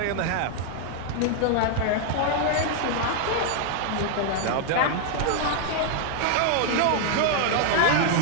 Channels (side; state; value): both; different; correlation 0.00